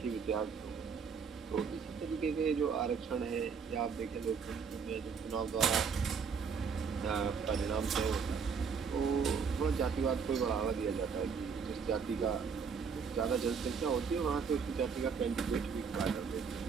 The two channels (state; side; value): quieter; left; 6.0 dB